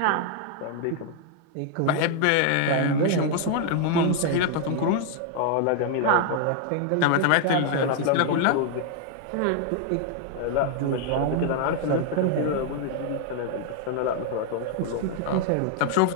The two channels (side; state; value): both; different; correlation 0.00